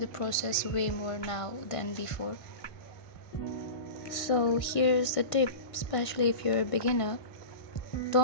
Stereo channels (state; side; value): late; right; 1.5 ms